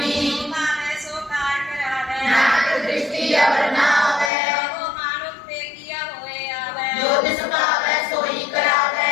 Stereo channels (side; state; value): right; drops out; at 4.3 s